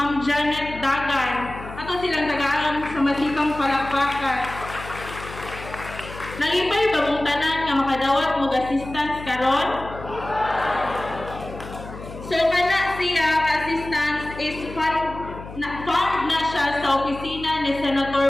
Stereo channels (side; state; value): left; noise; hum, 13 dB below the sound